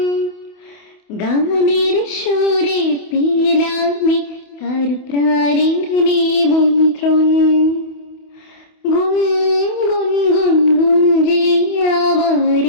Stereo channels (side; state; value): right; late; 28 ms